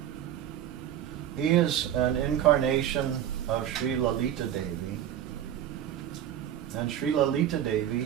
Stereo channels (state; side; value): quieter; left; 10.8 dB